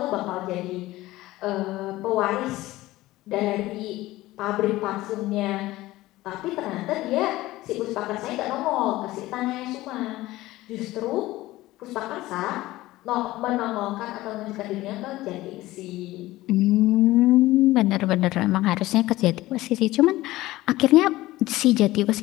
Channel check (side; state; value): right; quieter; 17.4 dB